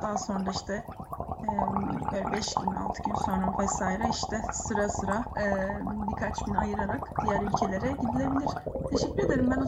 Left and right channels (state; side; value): identical; both; correlation 1.00